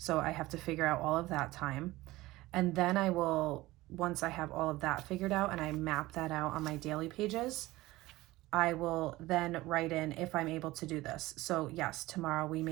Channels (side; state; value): left; quieter; 18.5 dB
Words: I have to figure out all of that time. And then I will, once I have all of that figured out and I map that out on my daily pages, I will then write in if I'm able to do this. So yes, tomorrow we